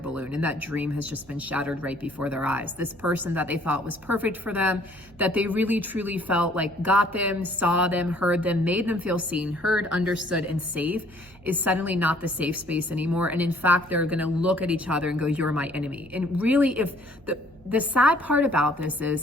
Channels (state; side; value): noise; right; hum, 25 dB below the sound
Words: and that dream has just been shattered right before their eyes. This person that they thought was perfect for them, that they really truly felt like got them, saw them, heard them, made them feel seen, heard, understood, and safe, is suddenly not the safe space anymore. And in fact, they're gonna look at each other and go, you're my enemy. And really, if the sad part about this